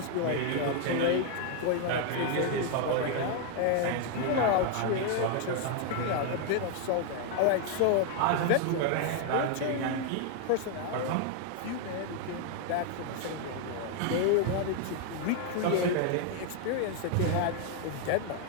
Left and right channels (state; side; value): different; both; correlation 0.00